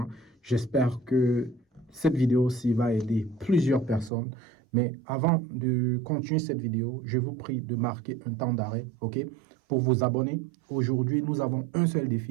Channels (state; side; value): drops out; left; at 4.1 s